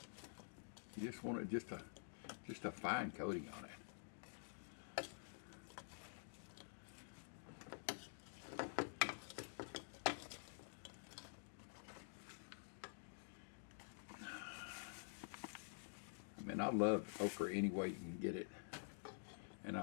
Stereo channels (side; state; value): right; silent; digital silence